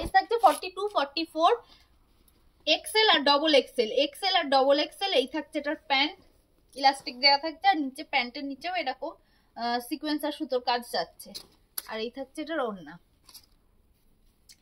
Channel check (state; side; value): identical; both; correlation 1.00